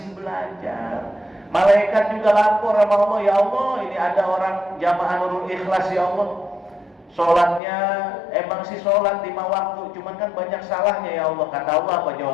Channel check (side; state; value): right; drops out; at 7.6 s